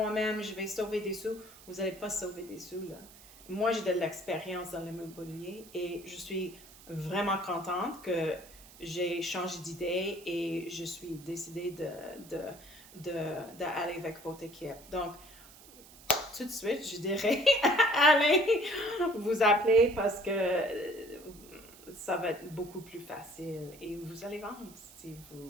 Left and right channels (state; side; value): noise; right; hiss, 21 dB below the sound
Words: je vais sauver des sous. Vous n'allez pas sauver des sous là. Moi j'ai de l'expérience dans l'immobilier et je suis vraiment contente que j'ai changé d'idée et je suis décidée d'aller avec votre équipe. Donc, tout de suite, je dirais, allez vous appeler parce que ça va être beaucoup plus facile et vous allez vendre si